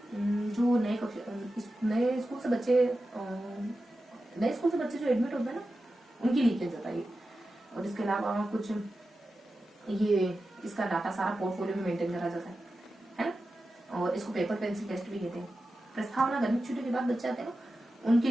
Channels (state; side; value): normal; both; correlation 0.92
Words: जो नए स्कूल से बच्चे जो एडमिट होते हैं ना, उनके लिए किया जाता है। और इसके अलावा कुछ ये इसका डाटा सारा पोर्टफोलियो में मेंटेन करा जाता है ना। और इसको पेपर पेंसिल टेस्ट भी कहते हैं। प्रस्तावना गर्मी छुट्टी के बाद बच्चे आते हैं ना, उनके